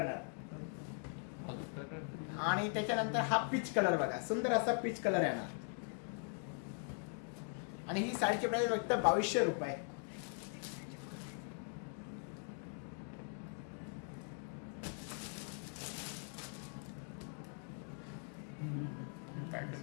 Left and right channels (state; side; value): silent; right; 50 dB below the other